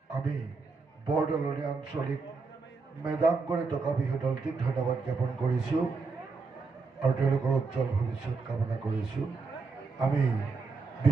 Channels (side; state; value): left; quieter; 4.4 dB